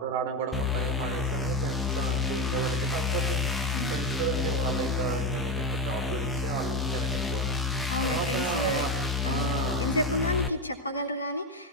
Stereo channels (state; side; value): normal; both; correlation 0.13